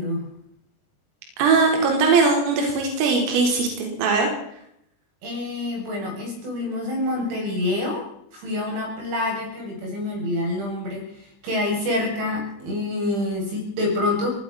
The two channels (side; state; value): left; late; 21 ms